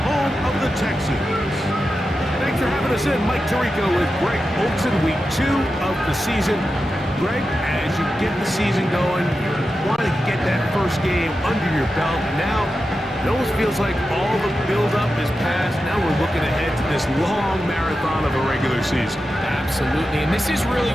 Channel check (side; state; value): both; normal; correlation 0.91